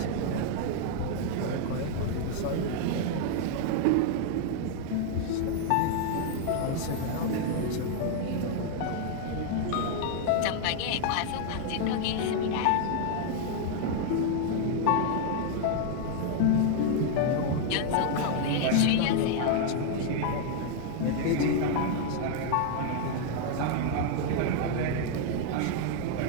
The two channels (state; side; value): different; both; correlation 0.00